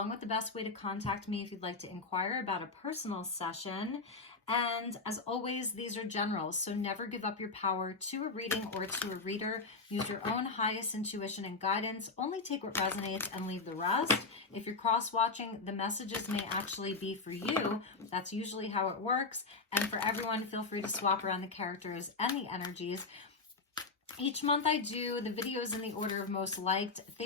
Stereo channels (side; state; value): right; quieter; 4.1 dB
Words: with the best way to contact me if you'd like to inquire about a personal session. And as always, these are generals, so never give up your power to a reading or to a reader. Use your own highest intuition and guidance. Only take what resonates and leave the rest. If you're cross-watching, the messages may actually be for you. That's usually how it works. And for everyone, feel free to swap around the characters and the energies. Each month I do the videos in the order of most liked.